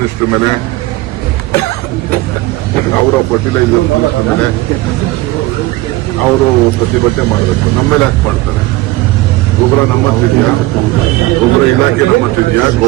ಮೇಲೆ, ಅವರ ಫರ್ಟಿಲೈಸರ್ ಮಿನಿಸ್ಟರ್ ಮೇಲೆ ಅವರು ಪ್ರತಿಭಟನೆ ಮಾಡಬೇಕು. ನಮ್ಮ ಮೇಲೆ ಯಾಕೆ ಮಾಡ್ತಾರೆ? ಗೊಬ್ಬರ ನಮ್ಮತ್ತಿದೆಯಾ? ಗೊಬ್ಬರ ಇಲಾಖೆ ನಮ್ಮತ್ತಿದೆಯಾ?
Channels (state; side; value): quieter; left; 19.0 dB